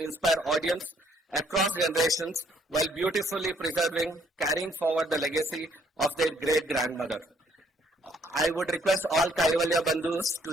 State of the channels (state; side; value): normal; both; correlation 0.66